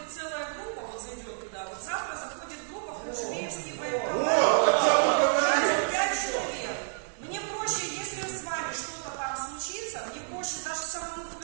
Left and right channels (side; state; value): left; silent; 58 dB below the other